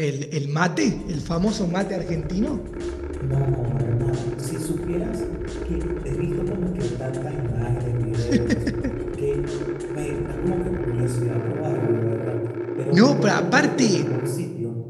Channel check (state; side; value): identical; both; correlation 1.00